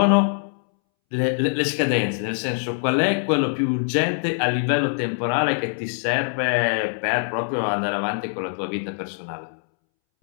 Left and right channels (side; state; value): right; silent; 63 dB below the other